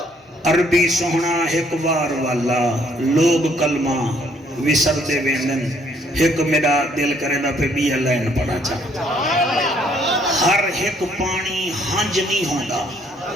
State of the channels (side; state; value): both; normal; correlation 0.65